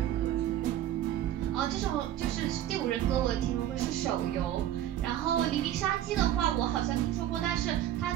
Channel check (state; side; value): quieter; left; 12.0 dB